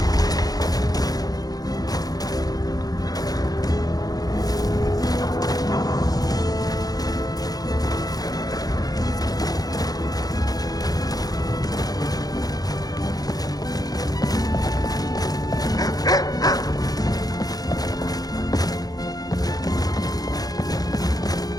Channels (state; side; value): late; right; 0.18 ms